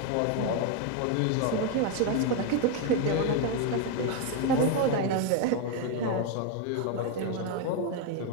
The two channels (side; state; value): both; different; correlation 0.01